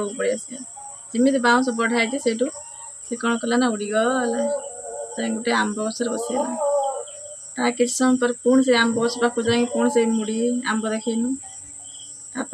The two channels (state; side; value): identical; both; correlation 1.00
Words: पड़े आस जमी बाउंस बढ़ाई से से कौन कला ना उड़ीगला गोटे आंब गसर बसैला ता कि समय पर पुणी से आंब गछ पाक जा पुणी से मुड़ी आंब देखनु